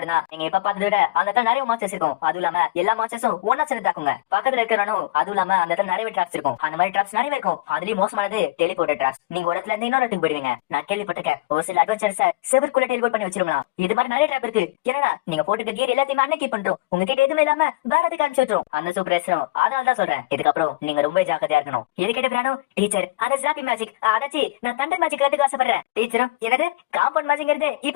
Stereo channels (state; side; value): quieter; right; 19.0 dB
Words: தான். நீங்க இப்ப பார்த்ததை விட அந்த இடத்துல நிறைய மாஸ்டர்ஸ் இருக்கும். அதுவும் இல்லாம எல்லா மாஸ்டர்ஸும் ஒன்னா சேர்ந்து தாக்குங்க. பக்கத்துல இருக்கிறவனும் அதுவும் இல்லாம அந்த இடத்துல நிறைய ட்ராப்ஸ் இருக்கும். அந்த மாதிரி ட்ராப்ஸ் நிறைய இருக்கும். அதுலயும் மோசமானது டெலிபோர்ட் ட்ராப்ஸ். நீங்க ஒரு இடத்துல இருந்து இன்னொரு இடத்துக்கு போயிடுவீங்க. நான் கேள்விப்பட்டிருக்கேன் ஒரு சில அட்வென்ச்சர்ஸ் செவருக்குள்ள டெலிபோர்ட் பண்ணி வச்சிருக்கலாம். இது மாதிரி நிறைய ட்ராப் இருக்கு. ஏன்னா நீங்க போட்டுக்க கியர் எல்லாத்தையுமே அன்னைக்கு பண்றோம். உங்ககிட்ட எதுவுமே இல்லாம வேற எதுக்கு அனுப்பிச்சிடும் அந்த சூப்பர் அதனால தான் சொல்றேன். இதுக்கப்புறம் நீங்க ரொம்ப ஜாக்கிரதையா இருக்கணும். எது கேட்ட பிரானோ டீச்சர் அந்த ஜாப்பி மேஜிக் அதாச்சி நான் தண்டர் மேஜிக் கத்துக்க ஆசைப்படுறேன். டீச்சரும் எனது காம்பவுண்ட் மேஜிக்ங்கிறது